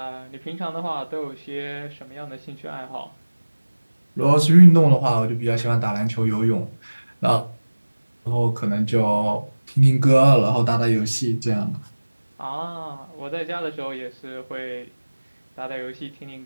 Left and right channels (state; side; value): inverted; both; correlation -1.00